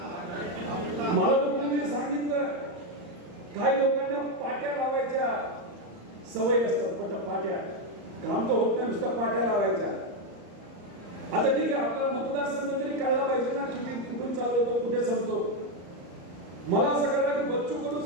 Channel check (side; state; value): left; late; 34 ms